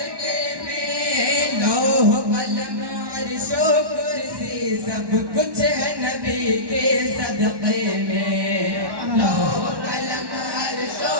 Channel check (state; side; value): late; left; 1.1 ms